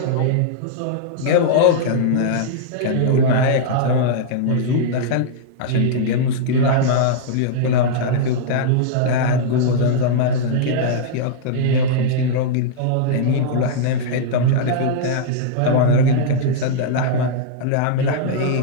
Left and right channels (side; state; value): both; different; correlation -0.02